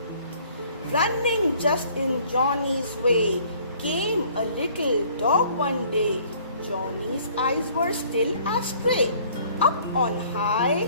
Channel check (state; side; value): inverted; both; correlation -0.57